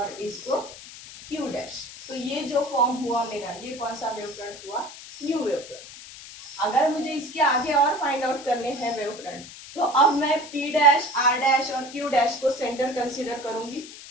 इसको क्यू डैश। तो ये जो फॉर्म हुआ मेरा, ये कौन सा वेवफ्रंट हुआ, न्यू वेवफ्रंट। अगर मुझे इसके आगे और फाइंड आउट करने हैं वेवफ्रंट, तो अब मैं पी डैश, आर डैश और क्यू डैश को सेंटर कंसीडर करूंगी।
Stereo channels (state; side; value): noise; left; hiss, 15 dB below the sound